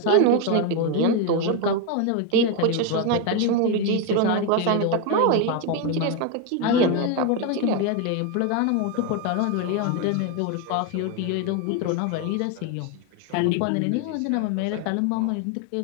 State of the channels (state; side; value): different; both; correlation 0.02